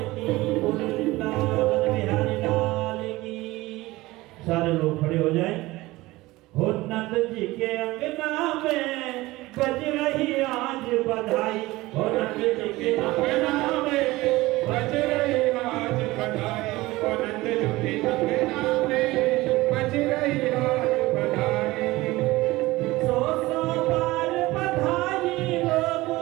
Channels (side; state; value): left; quieter; 19.4 dB